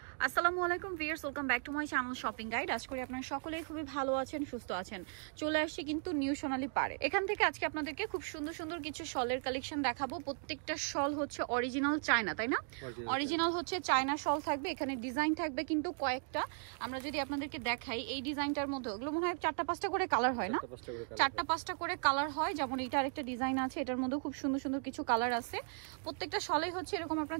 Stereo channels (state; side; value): silent; left; 53 dB below the other